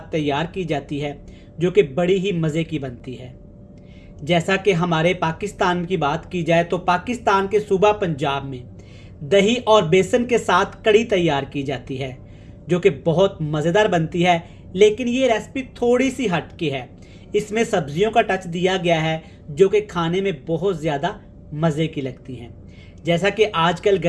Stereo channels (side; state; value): both; identical; correlation 1.00